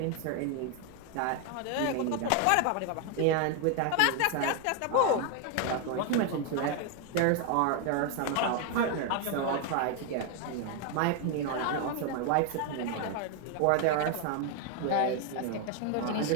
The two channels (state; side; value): different; both; correlation 0.01